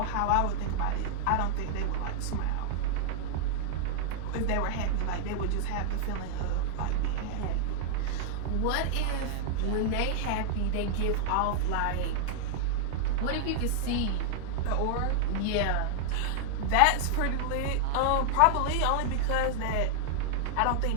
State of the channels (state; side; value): different; both; correlation -0.01